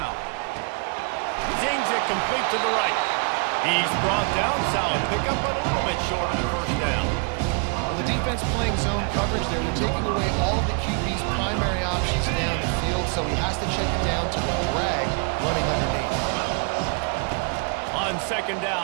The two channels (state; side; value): quieter; left; 38.4 dB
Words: Zings it complete to the right. He's brought down, solid pickup, but a little bit short of the first down. Well, the defense playing zone coverage there. They're taking away all the QB's primary options down the field, so he has to check it down to the drag running underneath. On second